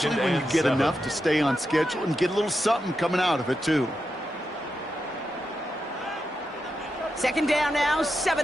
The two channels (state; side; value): normal; both; correlation 0.87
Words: when you get enough to stay on schedule and get a little something coming out of it, too. Second down now,